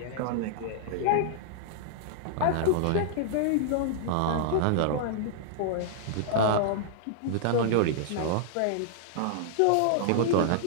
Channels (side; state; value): both; different; correlation -0.01